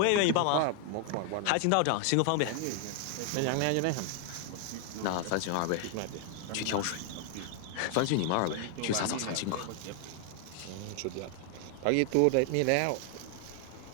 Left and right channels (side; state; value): both; different; correlation 0.00